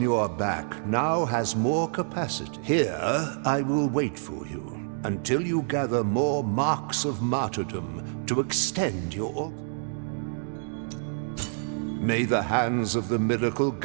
your back now has more capacity. Here, I will wait for you until you gather more marks of martyrdom to extend your altar. May the hands of the miracle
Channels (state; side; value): silent; left; digital silence